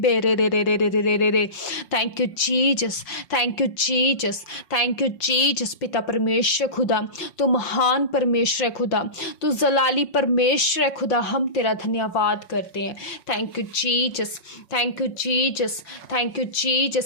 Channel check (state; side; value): late; right; 5.5 ms